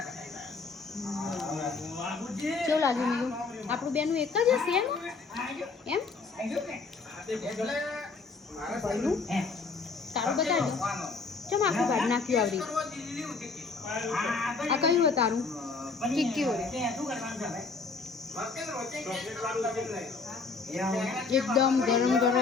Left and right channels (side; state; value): right; quieter; 4.4 dB